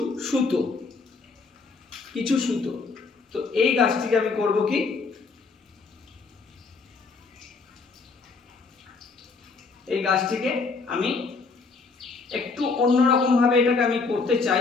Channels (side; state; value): right; quieter; 4.4 dB